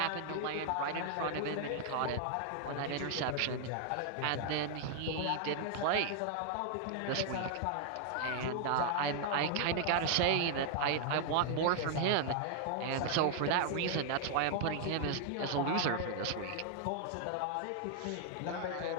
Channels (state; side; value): different; both; correlation 0.00